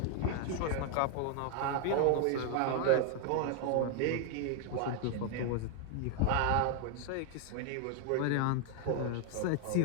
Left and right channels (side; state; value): both; different; correlation 0.00